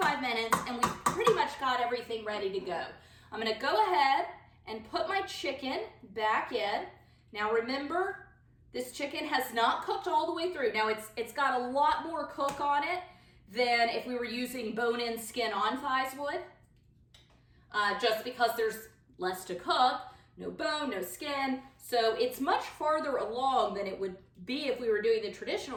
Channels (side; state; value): both; identical; correlation 1.00